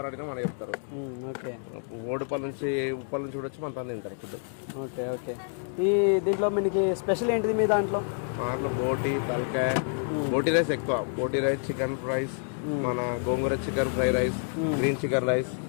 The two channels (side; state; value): right; silent; 59 dB below the other